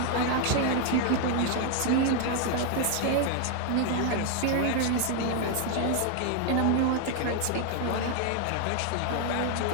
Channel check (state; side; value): different; both; correlation 0.00